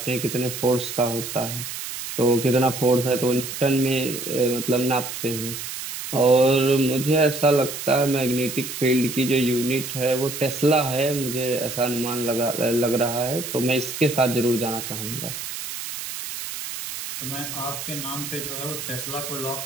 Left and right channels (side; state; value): right; noise; hiss, 7 dB below the sound